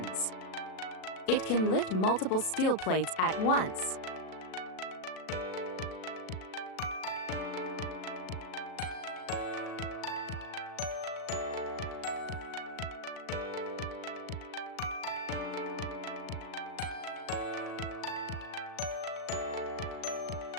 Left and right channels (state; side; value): late; right; 37 ms